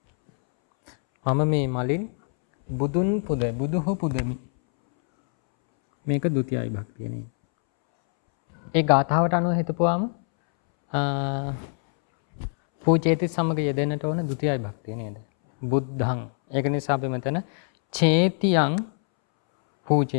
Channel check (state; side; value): silent; right; 62 dB below the other